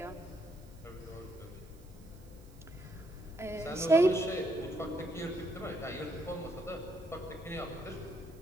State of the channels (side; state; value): right; noise; hiss, 27 dB below the sound